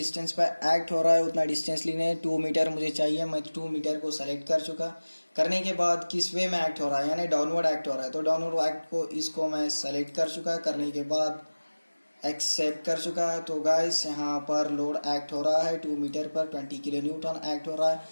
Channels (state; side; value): inverted; both; correlation -1.00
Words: पर एक्ट हो रहा है उतना डिस्टेंस लेने, 2 मीटर मुझे चाहिए, मैं 2 मीटर को सेलेक्ट कर चुका। करने के बाद किस वे में एक्ट हो रहा है, यानी डाउनवर्ड एक्ट हो रहा है, तो डाउनवर्ड एक्ट को इसको मैं सेलेक्ट कर चुका। करने के बाद एक्सेप्ट कर चुका। तो गाइस यहाँ पर लोड एक्ट हो रहा है 2 मीटर पर 20 किलो न्यूटन एक्ट हो रहा है।